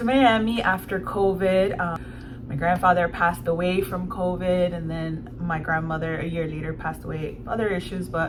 Miami after COVID. My grandfather passed away from COVID, and then my grandmother a year later passed away. Other issues,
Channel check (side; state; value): both; identical; correlation 1.00